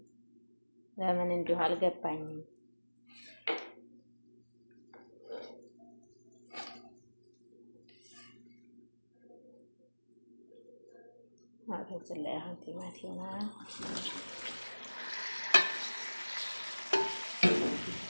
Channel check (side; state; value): both; inverted; correlation -1.00